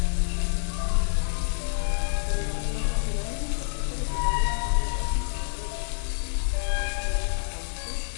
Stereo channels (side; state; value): right; silent; 60 dB below the other